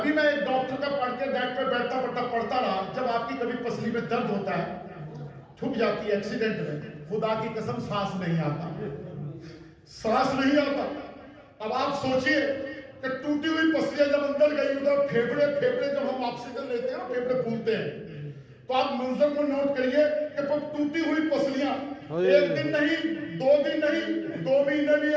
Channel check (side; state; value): both; identical; correlation 1.00